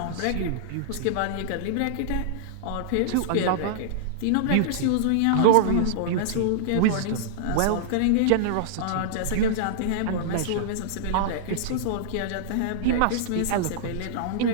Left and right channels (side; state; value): both; different; correlation -0.02